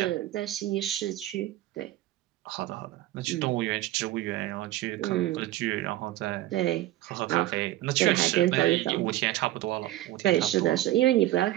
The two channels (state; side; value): quieter; left; 15.4 dB